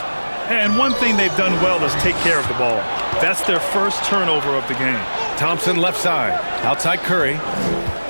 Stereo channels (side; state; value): both; inverted; correlation -1.00